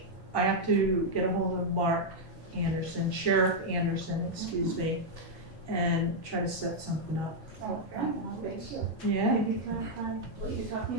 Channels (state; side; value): normal; both; correlation -0.03